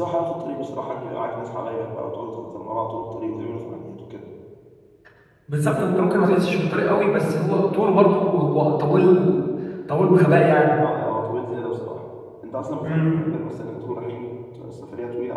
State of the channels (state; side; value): identical; both; correlation 1.00